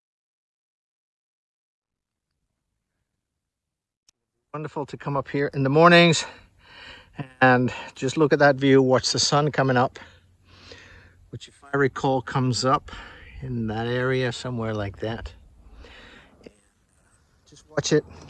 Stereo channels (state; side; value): identical; both; correlation 1.00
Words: Wonderful to come up here in the mornings and just look at that view, watch the sun coming up, which, if I recall, comes up in that area somewhere like that. Just watch it